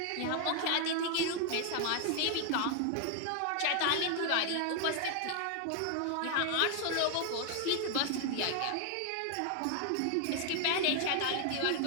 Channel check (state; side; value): different; both; correlation 0.00